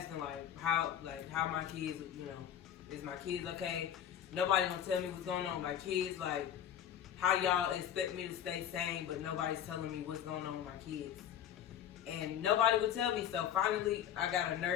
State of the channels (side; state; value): right; quieter; 9.9 dB